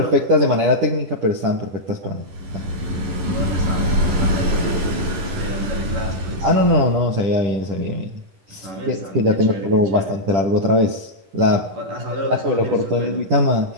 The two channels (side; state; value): left; late; 10 ms